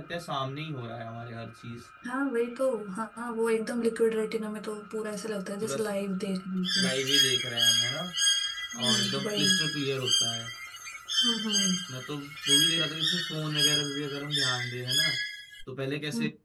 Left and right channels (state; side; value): identical; both; correlation 1.00